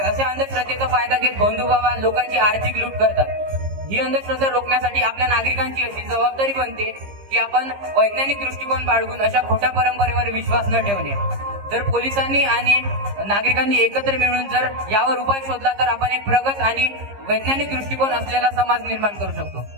असे अंधश्रद्धेचा फायदा घेत भोंदू बाबा लोकांची आर्थिक लूट करतात. ही अंधश्रद्धा रोखण्यासाठी आपल्या नागरिकांची अशी जबाबदारी बनते की आपण वैज्ञानिक दृष्टिकोन बाळगून अशा खोट्या परंपरेवर विश्वास न ठेवणे. जर पोलिसांनी आणि नागरिकांनी एकत्र मिळून जर यावर उपाय शोधला तर आपण एक प्रगत आणि वैज्ञानिक दृष्टिकोन असलेला समाज निर्माण करू शकतो.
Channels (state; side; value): late; left; 15 ms